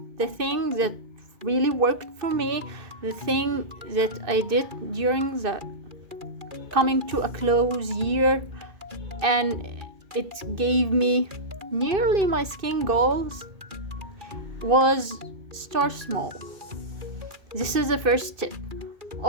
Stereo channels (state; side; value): late; left; 2.6 ms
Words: the thing that really worked for me, the thing that I did during the coming to a close year, and it gave me nearly my skin goals, was start small. This is the first tip.